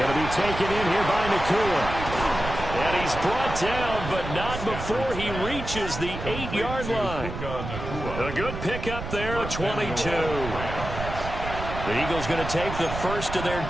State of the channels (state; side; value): noise; right; rumble, 7 dB below the sound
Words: to be taken in here by Nakua. And he's brought down, but not before he reaches the 8-yard line. A good pickup there at 22. The Eagles going to take the first of their